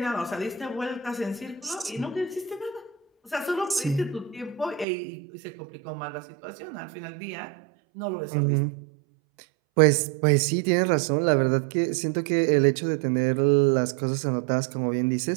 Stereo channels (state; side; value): drops out; left; at 4.9 s